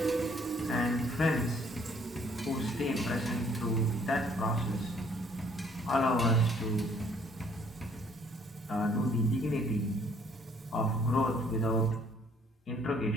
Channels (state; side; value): normal; both; correlation 0.62